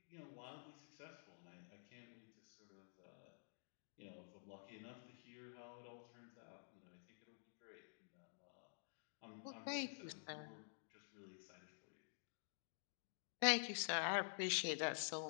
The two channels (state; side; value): silent; right; digital silence